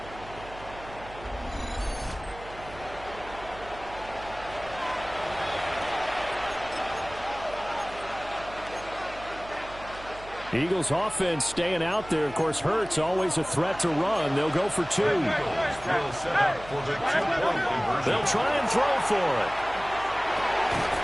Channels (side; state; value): right; noise; hum, 17 dB below the sound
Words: Eagles offense staying out there. Of course, Hurts always a threat to run. They'll go for two. They'll try and throw for it.